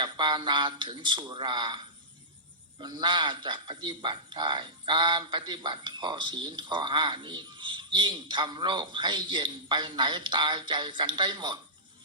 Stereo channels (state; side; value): normal; both; correlation -0.17